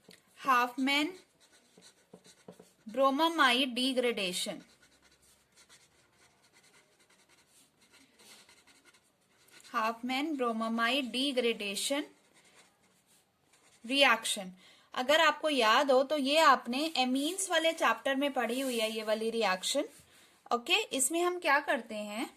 Hofmann-Bromamide degradation. Hofmann-Bromamide degradation reaction. अगर आपको याद हो तो ये आपने एमीन्स वाले चैप्टर में पढ़ी हुई है ये वाली रिएक्शन। ओके, इसमें हम क्या करते हैं,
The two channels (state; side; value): identical; both; correlation 1.00